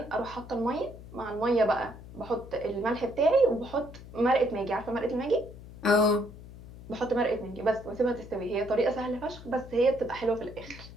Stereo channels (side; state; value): left; noise; hum, 16 dB below the sound